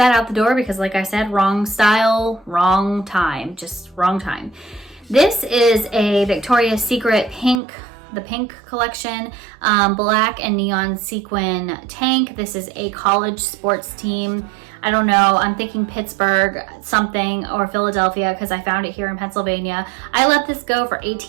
out the door because, like I said, wrong style, wrong time, just wrong time. This is a Victoria's Secret the pink collection, black and neon sequin tank. This is a college sports team. I don't know, I'm thinking Pittsburgh something or Philadelphia because I found it here in Pennsylvania. I let this go for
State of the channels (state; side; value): drops out; left; at 7.6 s